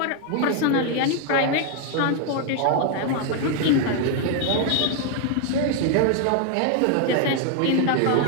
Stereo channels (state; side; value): different; both; correlation 0.00